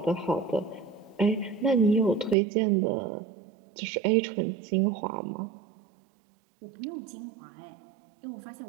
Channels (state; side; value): drops out; left; at 2.4 s